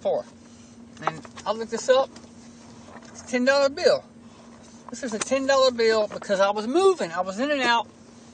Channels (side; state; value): both; identical; correlation 1.00